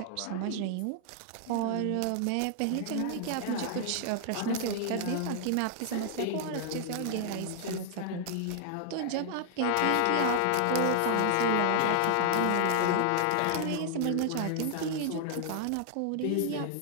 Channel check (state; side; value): different; both; correlation 0.00